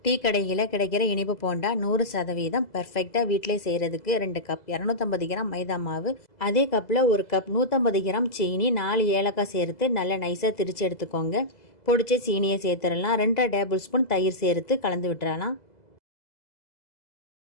Tea கடையில் கிடைக்கிற இனிப்பு போண்டா 100% பர்ஃபெக்டாக வீட்டிலே செய்கிறதுக்கு 2 கப் 250 கிராம் மைதா மாவு, அதே கப்பில் 1 கப் 150 கிராம் சீனி, 4 ஏலக்காய் சேர்த்து நல்லா நைஸாக திரித்து எடுத்துக்கோங்க. பொடிச்ச சீனியை சேர்த்துடலாம். 2 டேபிள் ஸ்பூன் தயிர் சேர்த்து கலந்து விட்டுறலாம்.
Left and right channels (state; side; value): late; right; 2.0 ms